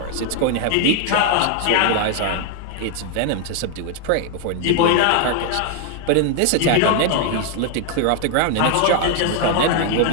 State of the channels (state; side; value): different; both; correlation 0.00